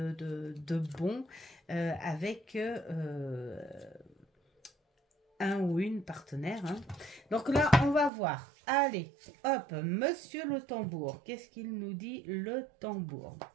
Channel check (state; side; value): drops out; left; at 8.1 s